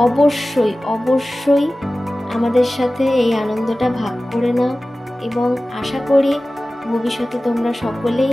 অবশ্যই অবশ্যই আমাদের সাথে এই আনন্দটা ভাগ করে নাও এবং আশা করি ভবিষ্যতে তোমরা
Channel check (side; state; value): both; normal; correlation 0.96